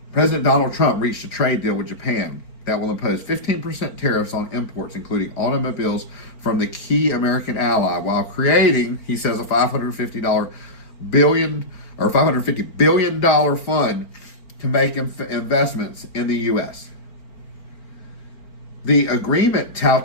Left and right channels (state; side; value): late; right; 4.4 ms